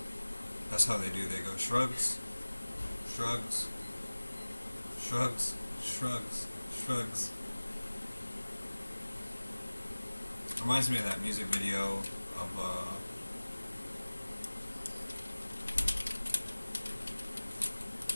That's how they do. They go shrugs. Reminds me of that music video of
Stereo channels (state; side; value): inverted; both; correlation -1.00